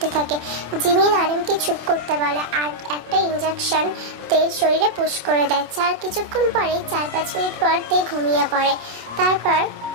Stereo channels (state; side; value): late; left; 27 ms